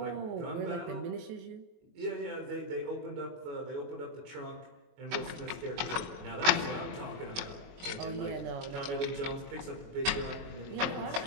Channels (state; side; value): late; left; 23 ms